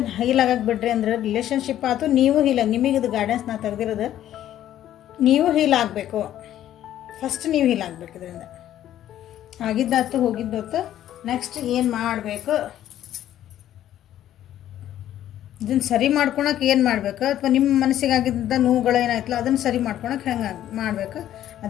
ಹೀಲ್ ಆಗಕ್ಕೆ ಬಿಡ್ರಿ ಅಂದ್ರೆ ರಿಲೇಷನ್ಶಿಪ್ ಆಯ್ತು, ನೀವು ಹೀಲ್ ನಿಮಗೆ ಇದು ಗೈಡೆನ್ಸ್ ನಾ ತೆಗೆದಿರೋದು. ನೀವು ಹೀಲ್ ಆಗಬೇಕು, ಫಸ್ಟ್ ನೀವು ಹೀಲ್ ಆಗಬೇಕು. ಇದರಿಂದ ಆಗಿದ್ದಾತು ಹೋಗಿದ್ದಾತು, ನೆಕ್ಸ್ಟ್ ಏನು ಮಾಡಬೇಕು, ಇದನ್ನು ಸರಿ ಮಾಡ್ಕೊಳಕ್ಕೆ ಏನು ಮಾಡಬೇಕು, ಅಥವಾ ನಿಮ್ಮ ಮನಸ್ಸಿಗಾಗಿದ್ದ ನೋವುಗಳು ಏನಾಯ್ತಲ್ಲ ಅದನ್ನು ಸರಿ ಮಾಡ್ಕೊಳಕ್ಕೆ ಹೆಂಗೆ ಮಾಡಬೇಕು,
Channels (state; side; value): quieter; right; 12.0 dB